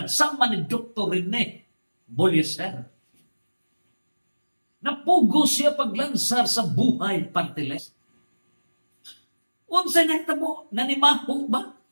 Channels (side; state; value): both; inverted; correlation -1.00